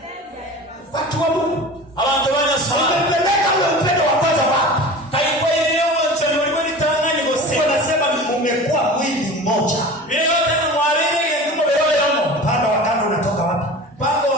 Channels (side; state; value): both; normal; correlation 0.36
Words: Watu wa Mungu. abantu banyasoma Wamepeleka ule upendo wa kwanza wapi? kaiko ile yote ndio litangani gose wanasema mmekuwa mwili mmoja ile yote ni mwalile ndio bero yamo panda wa kando unatoka wapi pako